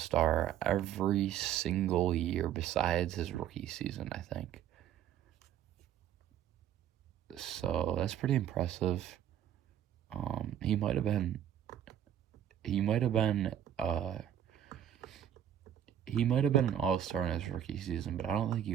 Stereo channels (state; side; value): quieter; left; 10.2 dB